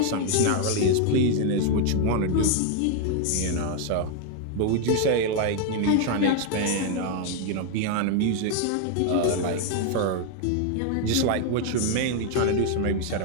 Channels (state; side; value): different; both; correlation 0.01